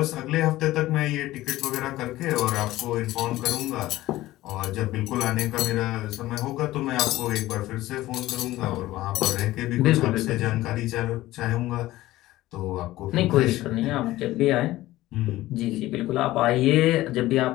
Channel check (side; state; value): right; quieter; 16.5 dB